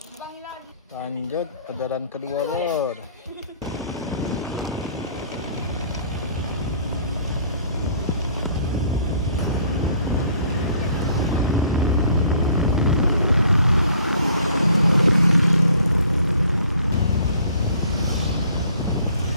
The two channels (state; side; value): inverted; both; correlation -0.56